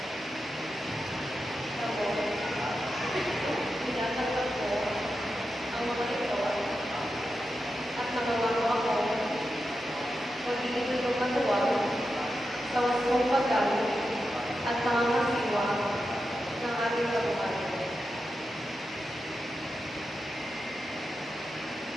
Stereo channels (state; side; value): normal; both; correlation 0.89